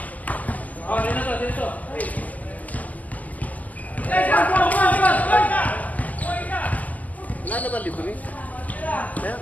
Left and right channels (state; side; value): late; right; 0.078 ms